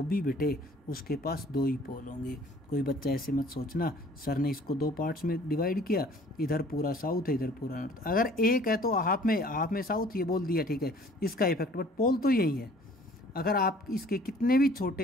भी बेटे उसके पास दो ही पोल होंगे। कोई बच्चा ऐसे मत सोचना सर ने इसको दो पार्ट्स में डिवाइड किया, इधर पूरा साउथ है इधर पूरा नॉर्थ। अगर एक है तो हाफ में साउथ ये बोल दिया, ठीक है, इसका इफेक्ट, बट पोल तो यही है। अगर आप इसके कितने भी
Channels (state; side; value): normal; both; correlation 0.53